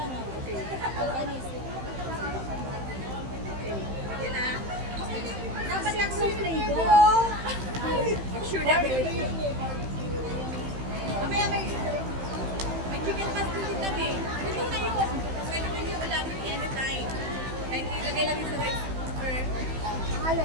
Okay. Organize. Okay. Yan na. Dapat lang sa flavor. I'm sure that will. Mamaya may chicken pastel din kami. Ito na yun. Pwede mo yung ulamin anytime. Kahit ilagay lang yung sa rice cooker. Alin?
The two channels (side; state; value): left; late; 15 ms